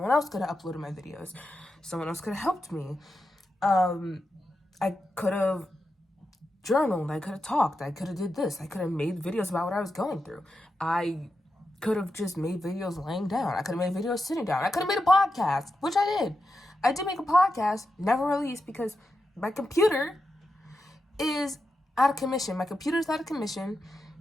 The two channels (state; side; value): normal; both; correlation 0.88